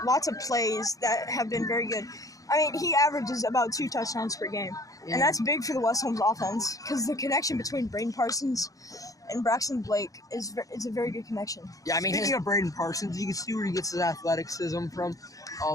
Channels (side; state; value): right; late; 0.17 ms